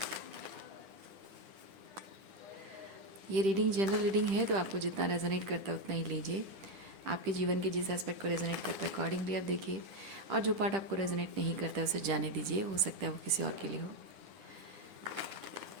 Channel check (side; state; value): left; late; 10 ms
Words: ये रीडिंग जनरल रीडिंग है, तो आपको जितना रेजोनेट करता है उतना ही लीजिए। आपके जीवन के जिस एस्पेक्ट को रेजोनेट करता है अकॉर्डिंगली आप देखिए, और जो पार्ट आपको रेजोनेट नहीं करता है उसे जाने दीजिए। हो सकता है वो किसी और के लिए हो।